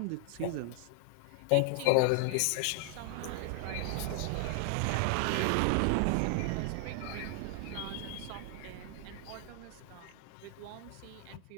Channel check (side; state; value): both; different; correlation 0.00